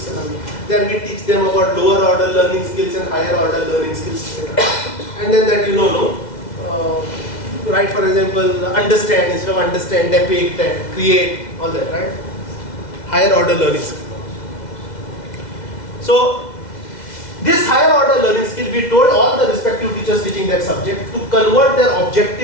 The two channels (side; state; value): right; late; 2.0 ms